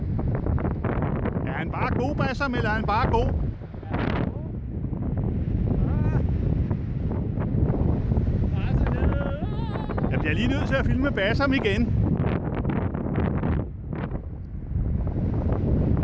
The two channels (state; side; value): identical; both; correlation 1.00